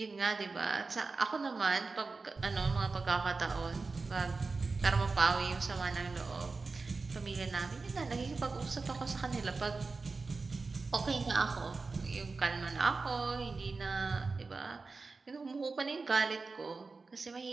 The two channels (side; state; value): left; quieter; 4.0 dB